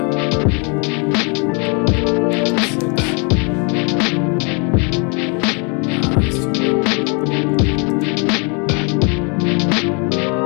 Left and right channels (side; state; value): right; quieter; 34.2 dB